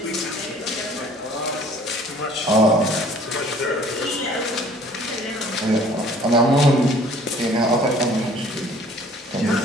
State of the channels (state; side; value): normal; both; correlation 0.53